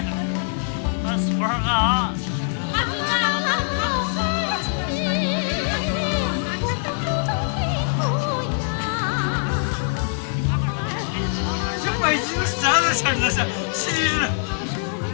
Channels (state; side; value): silent; right; 63 dB below the other